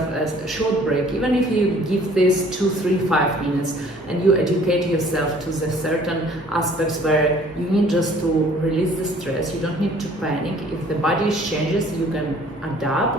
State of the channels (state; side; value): normal; both; correlation 0.55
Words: a short break, even if you give this 2, 3, 5 minutes, and you educate yourself to the certain aspects where you need just to release the stress. You don't need to panic. If the body changes, you can